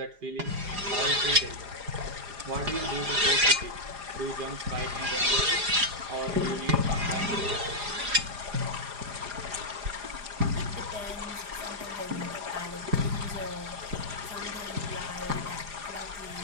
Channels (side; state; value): left; late; 4.9 ms